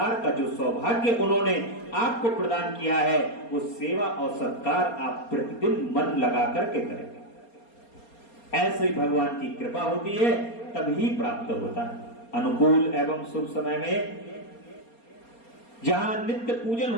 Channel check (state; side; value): late; right; 4.3 ms